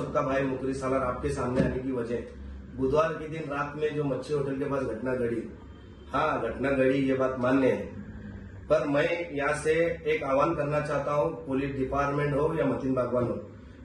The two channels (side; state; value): both; identical; correlation 1.00